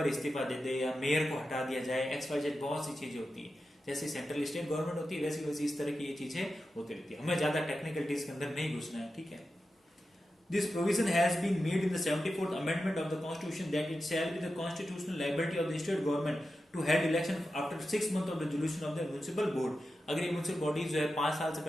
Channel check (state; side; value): normal; both; correlation 0.91